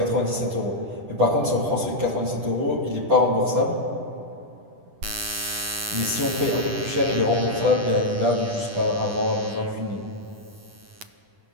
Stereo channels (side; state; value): left; late; 10 ms